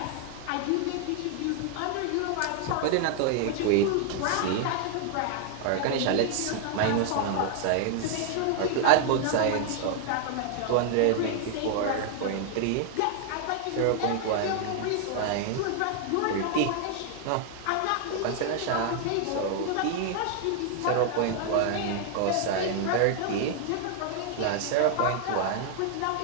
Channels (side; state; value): both; different; correlation 0.00